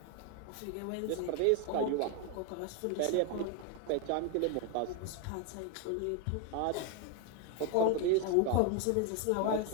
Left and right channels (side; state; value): both; different; correlation 0.01